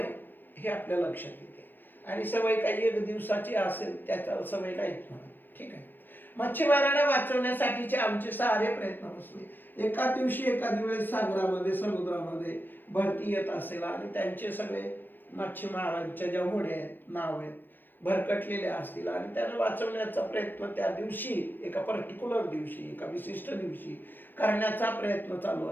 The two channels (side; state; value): right; late; 0.093 ms